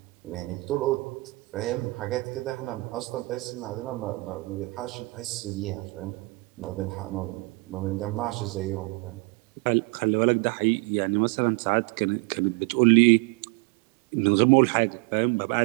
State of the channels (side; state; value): left; quieter; 25.6 dB